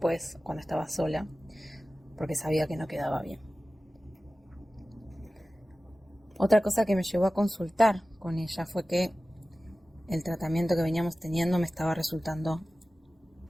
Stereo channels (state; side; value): normal; both; correlation 0.96